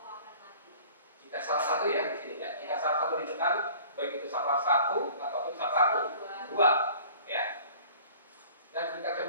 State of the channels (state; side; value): inverted; both; correlation -0.48